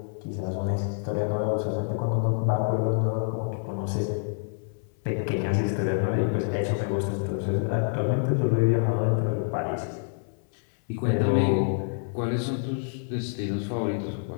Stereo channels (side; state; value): right; silent; 60 dB below the other